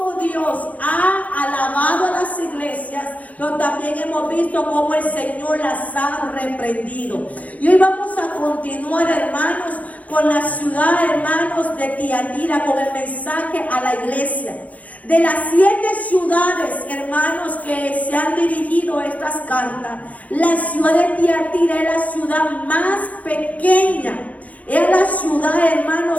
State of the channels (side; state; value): right; late; 0.071 ms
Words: Dios ha alabado a las iglesias, pero también hemos visto cómo el Señor las ha reprendido. Y hoy vamos a continuar, hermanos, con la ciudad, hermanos, de Tiatira, con el mensaje a la iglesia. De las 7 ciudades, hermanos, que se han dirigido estas cartas, la ciudad de Tiatira es la ciudad más pequeña. Es la ciudad,